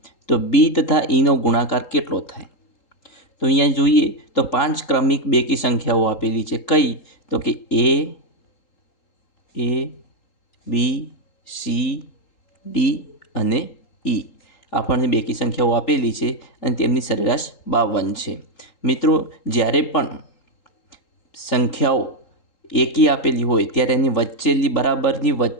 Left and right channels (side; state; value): right; late; 3.8 ms